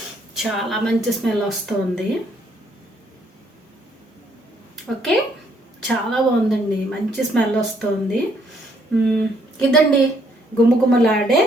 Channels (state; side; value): normal; both; correlation 0.68